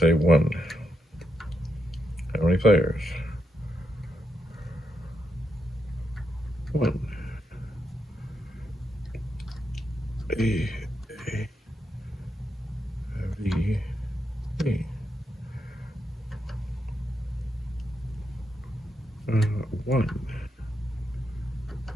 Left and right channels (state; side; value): normal; both; correlation 0.81